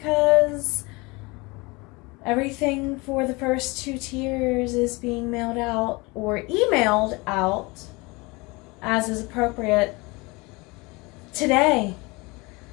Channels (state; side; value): quieter; right; 25.5 dB